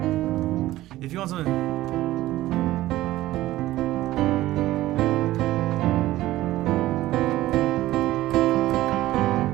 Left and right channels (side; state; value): left; quieter; 15.8 dB